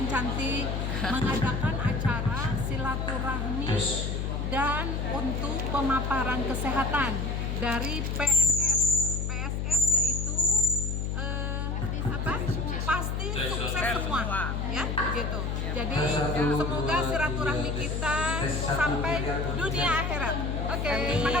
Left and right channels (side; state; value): left; noise; hum, 1 dB below the sound